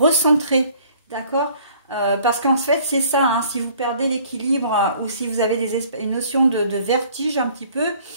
d'accord? Parce qu'en fait, c'est ça, hein, si vous perdez l'équilibre ou si vous avez une notion de vertige un petit peu,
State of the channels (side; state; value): both; inverted; correlation -0.55